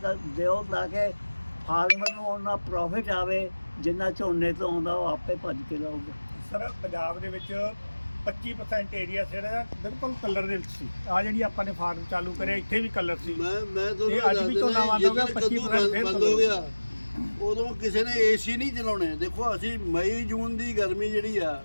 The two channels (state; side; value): inverted; both; correlation -1.00